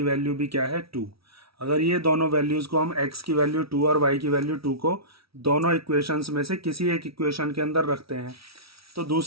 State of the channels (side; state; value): left; late; 0.75 ms